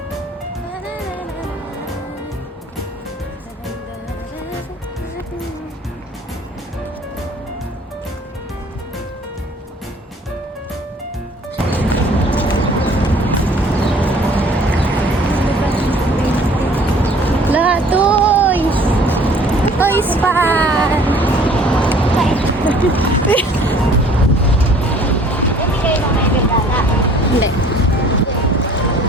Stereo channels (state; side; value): normal; both; correlation 0.53